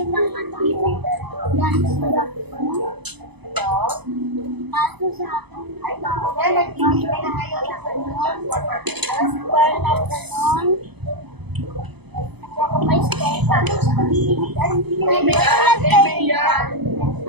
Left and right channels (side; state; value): left; late; 0.99 ms